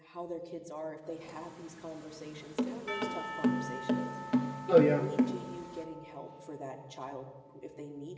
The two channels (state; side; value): identical; both; correlation 1.00